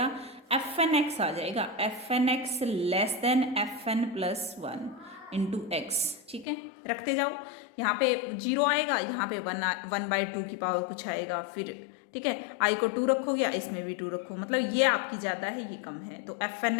एफ एन एक्स आ जाएगा, f N x less than f N + 1 into x, ठीक है। रखते जाओ, यहाँ पे 0 आएगा, यहाँ पे 1 बाई 2 की पावर कुछ आएगा फिर, ठीक है। आई को 2 रखोगे, इसमें भी 2 रखो, मतलब ये आपकी ज़्यादा है ये कम है। तो एफ एन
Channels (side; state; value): right; drops out; at 6.5 s